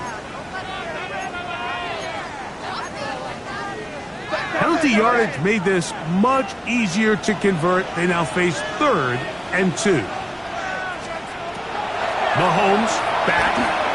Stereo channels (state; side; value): identical; both; correlation 1.00